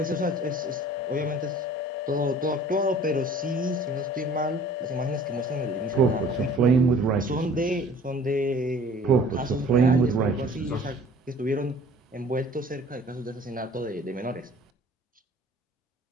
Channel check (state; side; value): normal; both; correlation 0.50